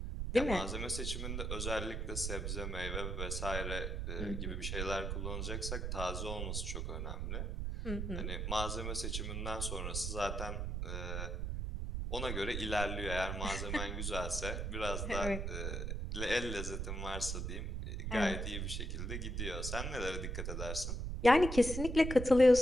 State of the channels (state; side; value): noise; right; rumble, 2 dB below the sound